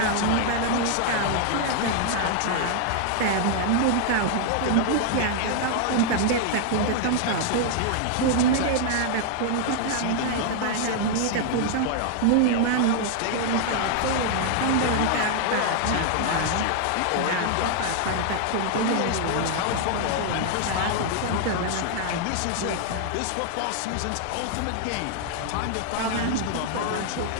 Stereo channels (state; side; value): different; both; correlation 0.00